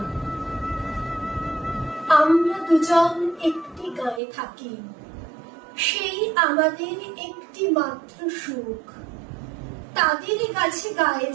আমরা দুজন একটি গায়ে থাকি, সেই আমাদের একটি মাত্র সুখ। তাদের কাছে গায়ে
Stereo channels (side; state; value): left; drops out; at 4.2 s